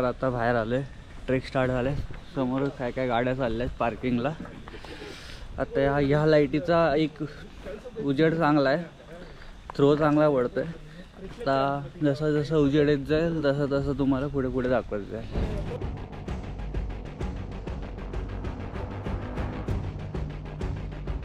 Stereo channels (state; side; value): identical; both; correlation 1.00